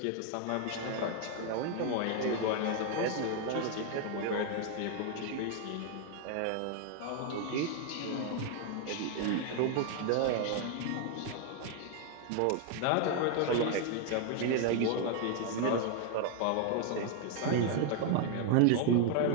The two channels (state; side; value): different; both; correlation 0.00